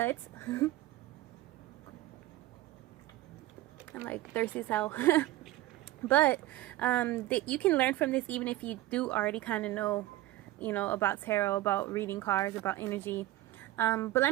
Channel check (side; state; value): left; quieter; 16.0 dB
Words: I'm like thirsty as hell. But you can learn from this even if you do already kind of know, about tarot, about reading cards, about energy. But